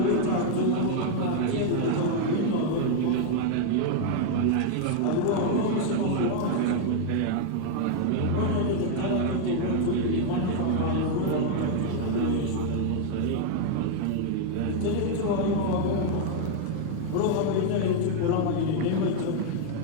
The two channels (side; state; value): both; different; correlation 0.00